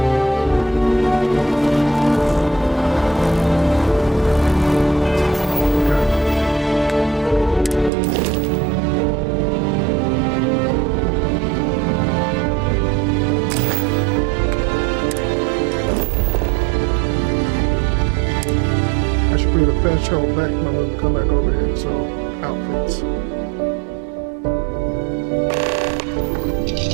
I should create a fast travel back when I'm gonna come back over here. So outfits.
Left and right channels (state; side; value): drops out; left; at 7.9 s